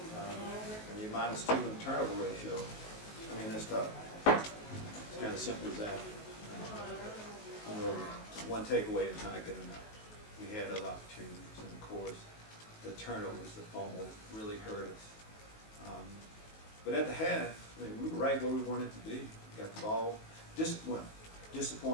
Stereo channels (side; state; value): right; late; 19 ms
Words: When you're -2 in turnover ratio, that's tough. It's kind of simple as that. One takeaway is not good enough. We had other opportunities, and of course, the turnovers, the fumble, really hurt us. But at the half, we were right where we wanted to be. We got the ball.